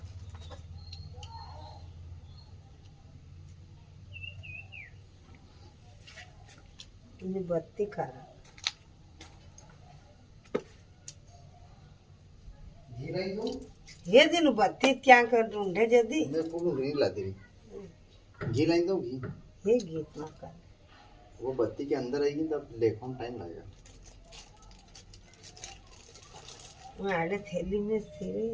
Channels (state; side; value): identical; both; correlation 1.00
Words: बत्ती खा रहा लाइन दो ये दिन बत्ती क्या कर ढूंढे जदी मैं पूरी घी ला दे घी लाइन दो घी ये गीत ना कर वो बत्ती के अंदर आएगी तब लेखों टाइम लगेगा मैं आड़े थैली में सिरे